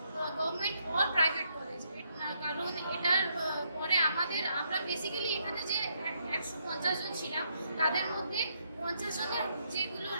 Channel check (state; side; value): inverted; both; correlation -0.75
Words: government or private college. কারণ এটার পরে আমরা বেসিক্যালি এখানে যে 150 জন ছিলাম, তাদের মধ্যে 50 জনের যেগুলো